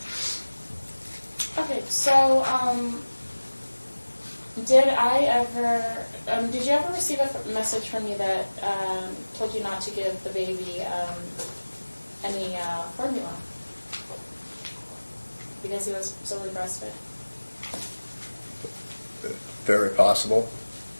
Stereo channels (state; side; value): inverted; both; correlation -1.00